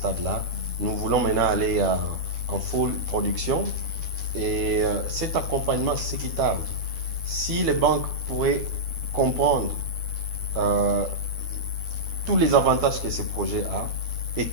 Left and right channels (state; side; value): late; left; 12 ms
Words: Nous voulons maintenant aller en full production. Et cet accompagnement, c'est ce qui tarde. Si les banques pourraient comprendre tous les avantages que ce projet a et